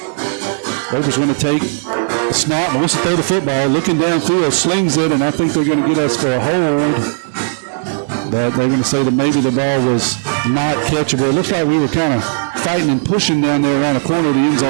Loper's going to take the snap, wants to throw the football, looking downfield, slings it, and I think they're going to get us for a hold. But they're going to say that maybe the ball was not catchable. It looks like we were kind of fighting and pushing down there around the corner. The end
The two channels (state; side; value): silent; left; 68 dB below the other